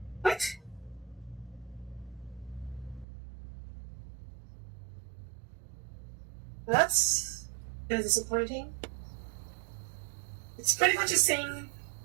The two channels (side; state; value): left; drops out; at 3.1 s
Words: What? That's kind of disappointing. It's pretty much the same